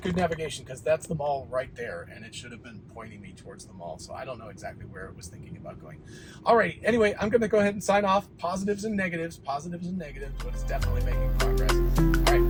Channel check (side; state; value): both; identical; correlation 1.00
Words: good navigation, because that's the mall right there, and it should have been pointing me towards the mall, so I don't know exactly where it was thinking about going. All right, anyway, I'm going to go ahead and sign off. Positives and negatives, but it's definitely making progress. All